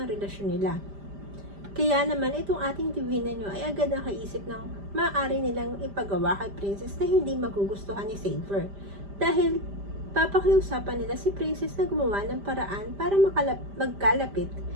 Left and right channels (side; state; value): left; late; 5.0 ms